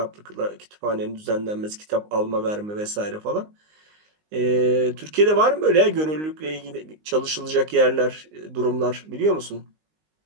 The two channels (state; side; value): late; left; 19 ms